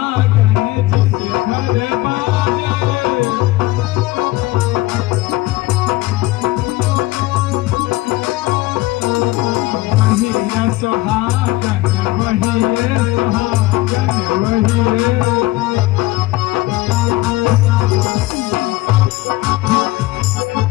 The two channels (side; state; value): right; quieter; 18.3 dB